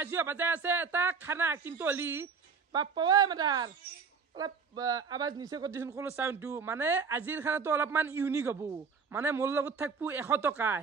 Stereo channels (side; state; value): left; quieter; 5.5 dB